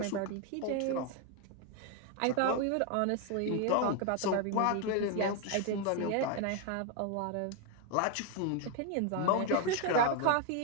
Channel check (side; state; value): both; different; correlation 0.01